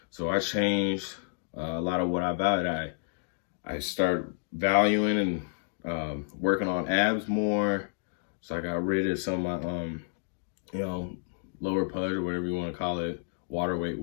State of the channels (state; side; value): silent; right; digital silence